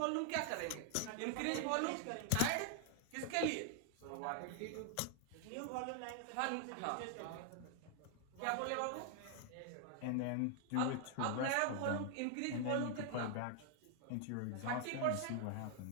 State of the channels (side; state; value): both; different; correlation 0.00